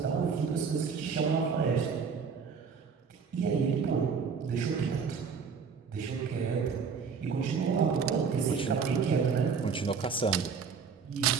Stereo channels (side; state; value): left; quieter; 5.9 dB